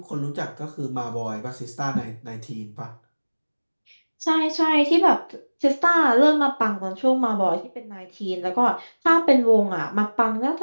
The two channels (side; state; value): both; inverted; correlation -1.00